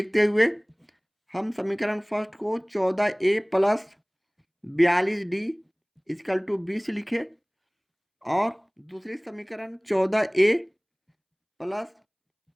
हुए हम समीकरण फर्स्ट को 14A plus 42D equal to 20 लिखे, और दूसरी समीकरण 14A प्लस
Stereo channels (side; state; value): both; identical; correlation 1.00